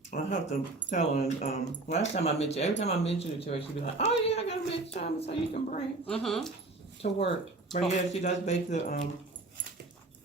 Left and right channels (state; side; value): quieter; left; 3.2 dB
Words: I have to tell her. Last time I mentioned, every time I mention it to her, she'd be like, "Oh yeah, I gotta make salmon so you can bring to work." But yeah, she does bake the.